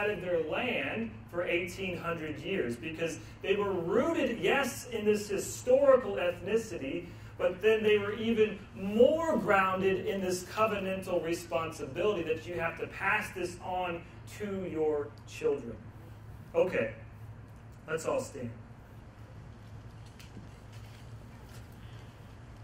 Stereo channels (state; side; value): identical; both; correlation 1.00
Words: of their land for 1,800 years. Because they were rooted, yes, in this historical ethnicity, but then they were even more grounded in this covenantal responsibility that you have to pass this on to your children. Okay, let's all stand.